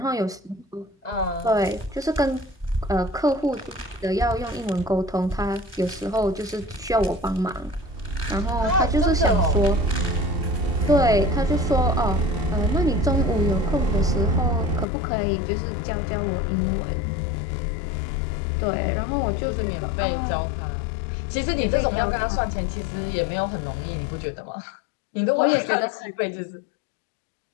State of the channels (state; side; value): drops out; right; at 14.9 s